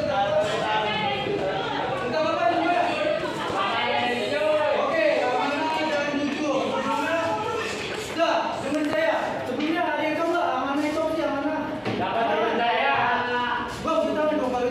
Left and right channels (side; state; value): both; identical; correlation 1.00